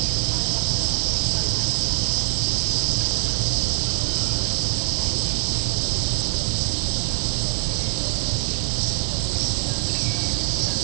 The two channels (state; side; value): silent; left; 63 dB below the other